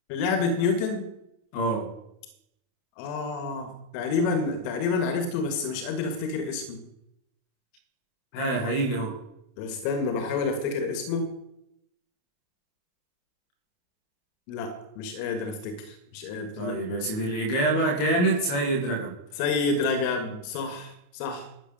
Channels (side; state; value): right; late; 28 ms